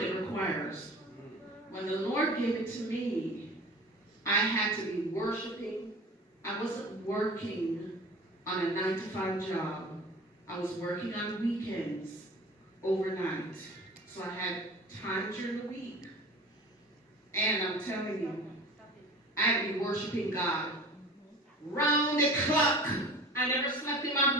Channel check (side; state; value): both; normal; correlation 0.40